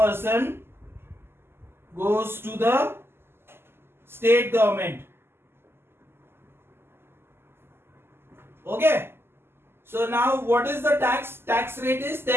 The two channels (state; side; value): late; left; 0.12 ms